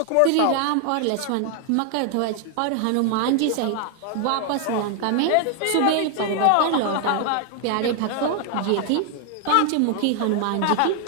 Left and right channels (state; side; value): different; both; correlation 0.00